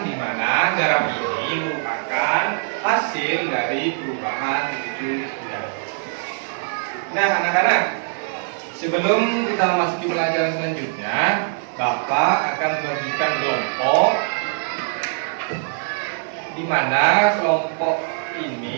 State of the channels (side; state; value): left; silent; digital silence